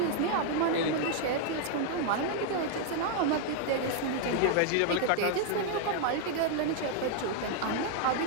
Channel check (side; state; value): both; different; correlation 0.00